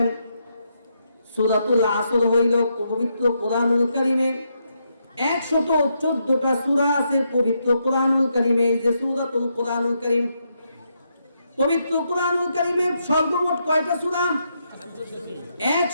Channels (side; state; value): both; inverted; correlation -0.80